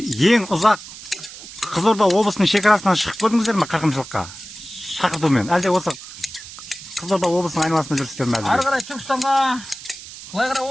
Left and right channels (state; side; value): noise; right; hiss, 14 dB below the sound